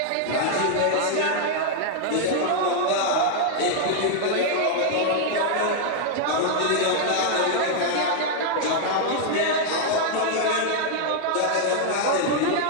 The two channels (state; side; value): different; both; correlation 0.00